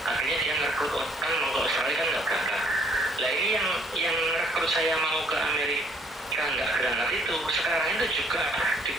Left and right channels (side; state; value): both; normal; correlation 0.63